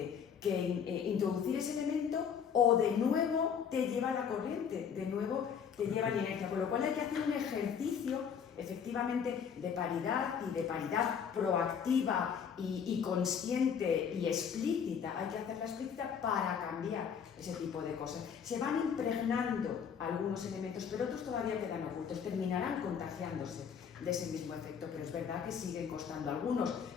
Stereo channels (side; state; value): right; quieter; 7.3 dB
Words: que introducir ese elemento, o de nuevo te lleva la corriente, de nuevo te lleva la inercia, con lo cual hay que hacer un ejercicio efectivamente de paridad y de paridad proactiva y consciente y explícita. Hay que hacerla explícita para cambiar ese tipo de cosas. Se van impregnando algunos elementos, pero otros todavía quedan ocultos, terminarán contagiándose de ese mismo efecto, pero es verdad que siguen costando. Algunos,